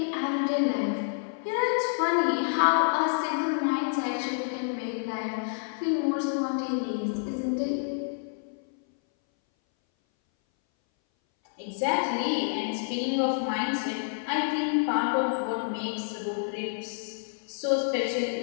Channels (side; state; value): right; silent; 58 dB below the other